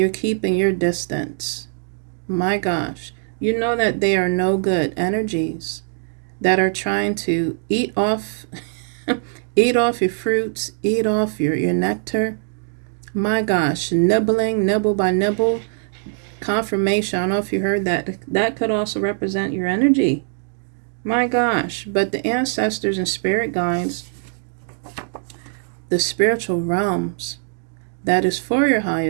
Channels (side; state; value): left; silent; digital silence